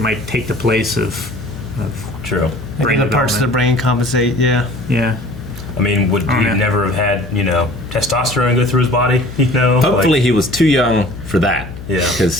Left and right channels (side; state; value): left; noise; hum, 12 dB below the sound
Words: take the place of True. Maybe brain the parts of the development. brain compensate. Yeah. Yeah. I mean, would Oh, he yeah. never have had, testosterone go through his body? Hopefully he was too young for that. Yeah.